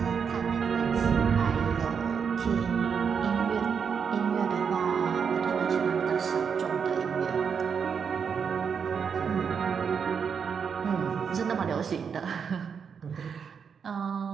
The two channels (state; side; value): quieter; left; 6.6 dB